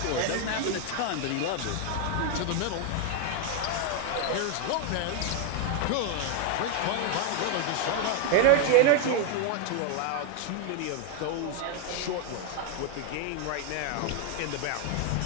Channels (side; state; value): both; different; correlation 0.00